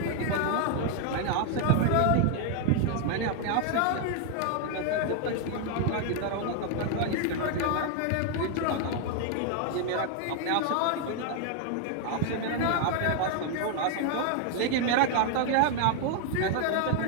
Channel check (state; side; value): different; both; correlation 0.00